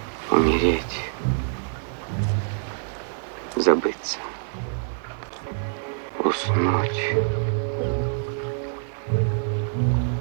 Умереть, забыться, уснуть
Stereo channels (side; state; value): left; silent; digital silence